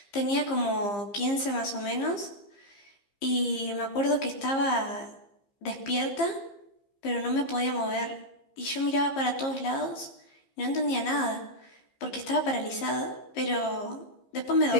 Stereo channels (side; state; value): right; late; 15 ms